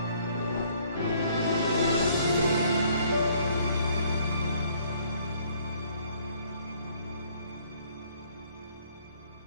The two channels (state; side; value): inverted; both; correlation -0.62